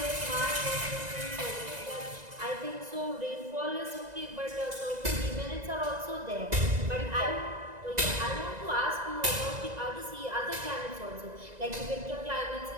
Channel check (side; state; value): left; late; 2.0 ms